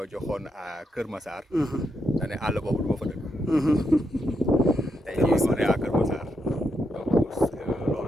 joxoon à Kër Massar da ne àll boobu du ma fa dëkk tey jii on est à Kër Massar donc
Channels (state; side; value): normal; both; correlation 0.81